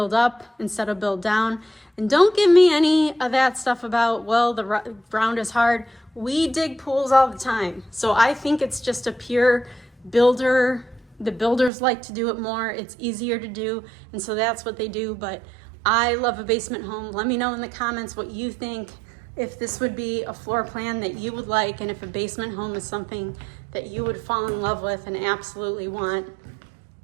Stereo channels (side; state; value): left; drops out; at 11.7 s